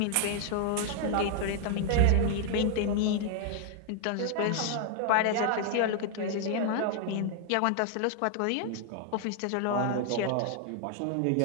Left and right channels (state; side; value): different; both; correlation 0.00